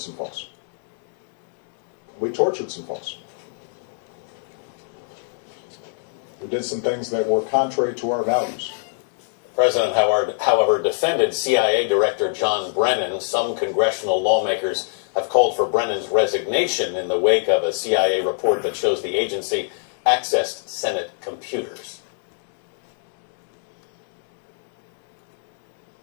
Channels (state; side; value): silent; right; digital silence